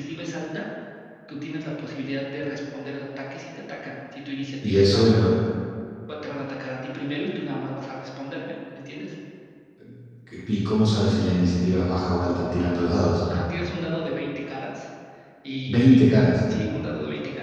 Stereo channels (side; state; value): both; identical; correlation 1.00